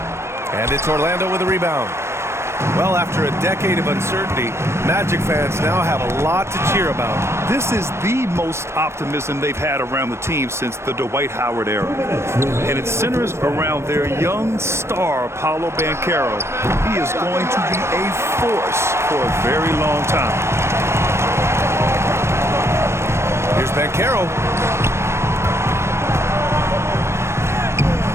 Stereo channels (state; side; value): late; left; 0.13 ms